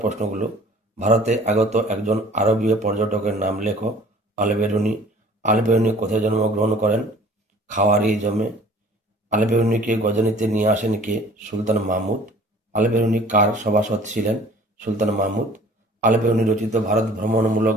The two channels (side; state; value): both; normal; correlation 0.50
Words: ভারতে আগত একজন আরবীয় পর্যটকের নাম লেখো। আল-বেরুনি। আল-বেরুনি কোথায় জন্মগ্রহণ করেন? খাওয়ারিজমে। আল-বেরুনিকে গজনিতে নিয়ে আসেন কে? সুলতান মাহমুদ। আল-বেরুনি কার সভাসদ ছিলেন? সুলতান মাহমুদ। আল-বেরুনি রচিত ভারত ভ্রমণমূলক